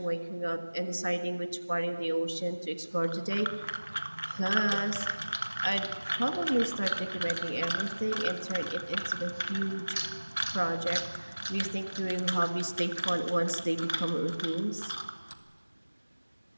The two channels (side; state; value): both; inverted; correlation -1.00